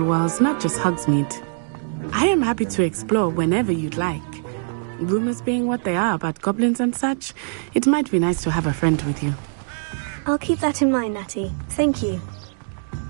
walls, not just Hogsmeade. I am happy to explore whenever you'd like. Rumors being what they are about goblins and such, it might be nice to have a friend with you. I'll keep that in mind, Natty. Thank you.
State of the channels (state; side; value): silent; left; 64 dB below the other